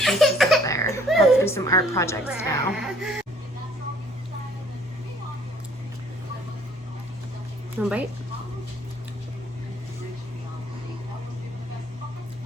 up there. I'll have to do some art projects now. One bite.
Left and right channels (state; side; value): normal; both; correlation 0.59